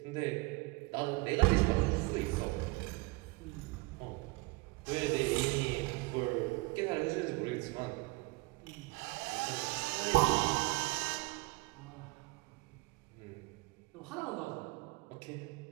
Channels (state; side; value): quieter; left; 24.0 dB